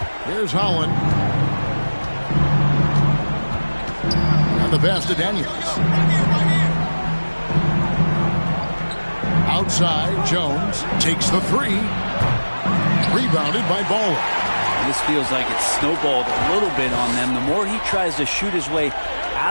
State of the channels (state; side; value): inverted; both; correlation -1.00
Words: Here's Holland. And the pass to Daniels. Outside, Jones takes the 3. Rebounded by Bowler. This feels like it's snowballed a little bit on them. The more he tries to shoot his way